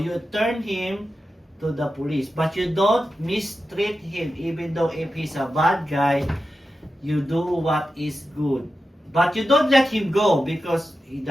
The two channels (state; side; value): normal; both; correlation 0.91